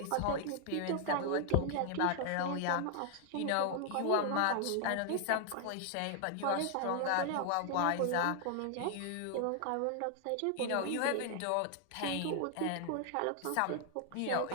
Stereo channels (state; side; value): different; both; correlation 0.00